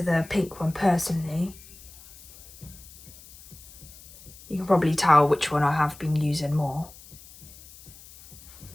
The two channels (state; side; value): noise; left; hiss, 20 dB below the sound